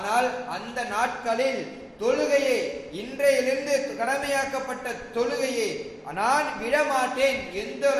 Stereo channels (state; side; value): identical; both; correlation 1.00